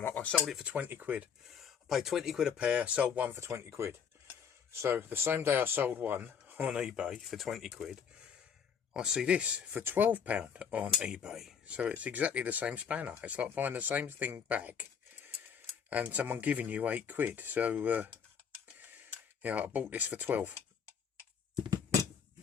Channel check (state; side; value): quieter; right; 7.1 dB